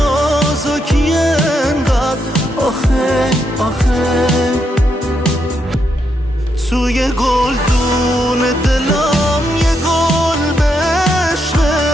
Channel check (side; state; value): both; normal; correlation 0.80